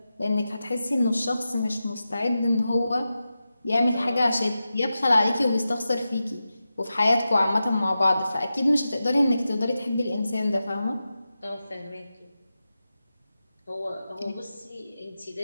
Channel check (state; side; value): inverted; both; correlation -0.92